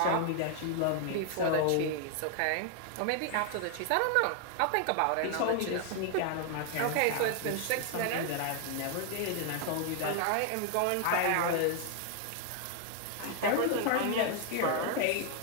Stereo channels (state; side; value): different; both; correlation 0.00